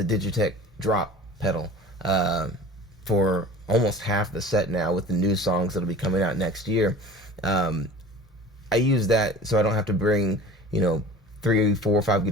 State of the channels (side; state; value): both; normal; correlation 0.40